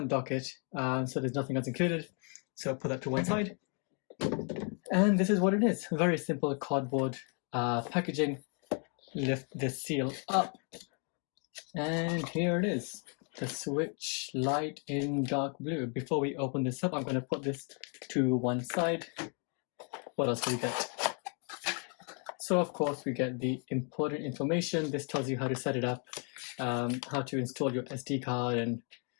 dock it, so there's nothing else included. So put that to one side. And this is what it is. Very simple cardboard packaging. Lift this seal up. And here it is. The Switch Lite in dark blue. Before we open this up, I'm going to put this to one side. What else do we get? So of course we get the important information. This tells you how to set it up, how to install your SD card, and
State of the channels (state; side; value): quieter; right; 39.5 dB